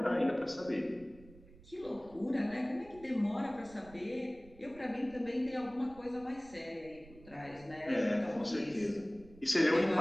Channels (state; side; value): noise; right; rumble, 22 dB below the sound